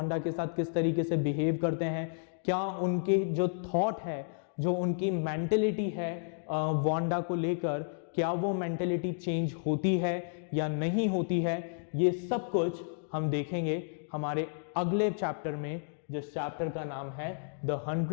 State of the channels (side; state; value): right; silent; digital silence